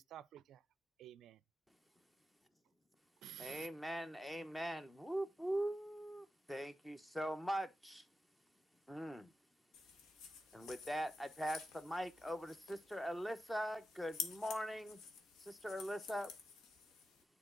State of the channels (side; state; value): both; normal; correlation 0.90